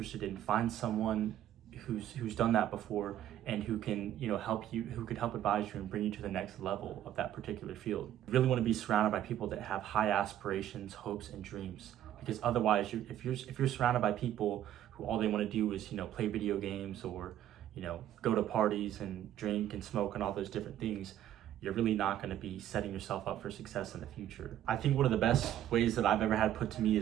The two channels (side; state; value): left; quieter; 11.7 dB